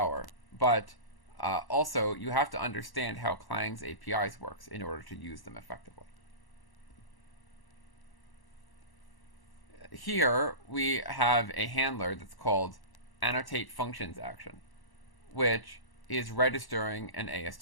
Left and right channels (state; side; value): late; right; 1.1 ms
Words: but also you have to understand how Clang's APIs works in order to use them effectively. Here we have a handler that's called annotate functions action, which is registering an